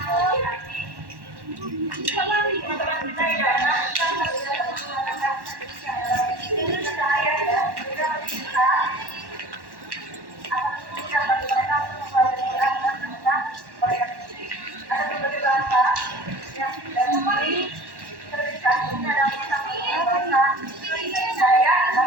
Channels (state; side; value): late; left; 1.1 ms